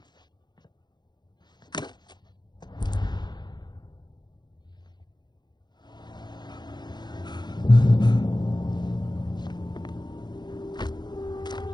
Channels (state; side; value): late; right; 0.21 ms